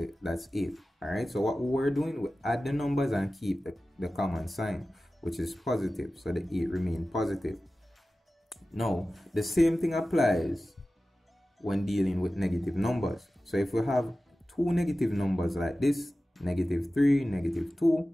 that's 8. Alright, so what we're doing, we add the numbers and keep the common sign, which is positive, so the 8 remain positive. Now, the same thing applies when dealing with negative numbers. So if we have two negative numbers like this, negative 3, negative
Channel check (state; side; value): normal; both; correlation 0.95